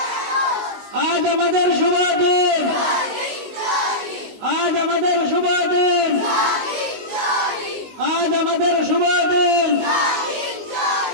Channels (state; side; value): late; left; 19 ms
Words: আজ আমাদের শুভ দিন, আজ আমাদের শুভ দিন, আজ আমাদের শুভ দিন।